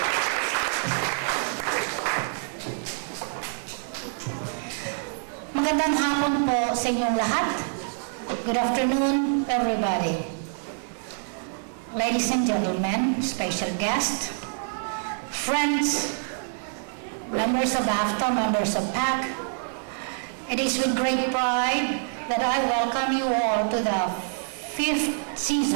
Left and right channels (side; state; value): left; silent; 61 dB below the other